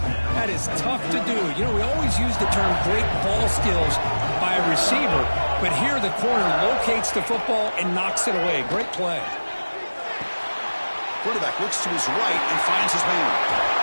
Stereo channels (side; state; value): both; inverted; correlation -1.00